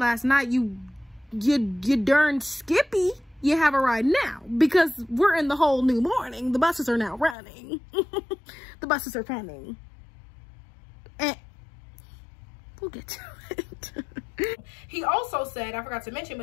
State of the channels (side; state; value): right; drops out; at 7.4 s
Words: night, you darn skippy, you have a ride now, because we're in the whole new morning. The buses are now running. The buses are coming. And we'll get to it. He also said, I forgot to mention,